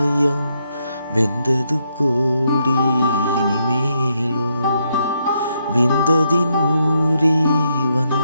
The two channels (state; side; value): inverted; both; correlation -0.78